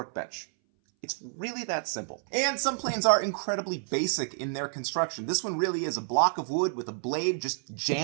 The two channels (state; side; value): silent; left; 58 dB below the other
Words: It's really that simple. And some planes are incredibly basic in their construction. This one really is a block of wood with a blade just